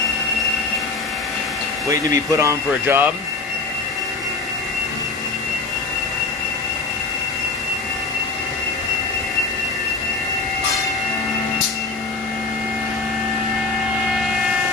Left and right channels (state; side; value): quieter; right; 3.9 dB